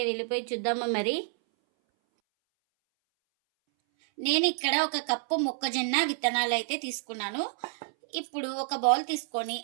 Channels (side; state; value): left; silent; 59 dB below the other